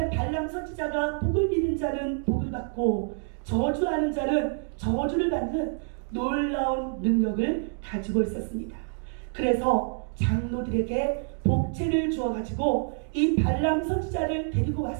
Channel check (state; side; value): silent; left; 55 dB below the other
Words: 선지자가 복을 비는 자는 복을 받고 저주하는 자는 저주를 받는 놀라운 능력을 가지고 있었습니다. 그래서 장로들에게 복채를 주어가지고 이 발람 선지자를 데리고